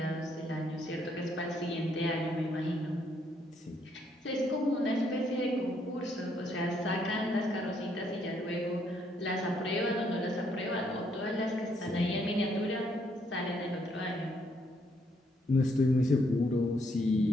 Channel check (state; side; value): normal; both; correlation 0.72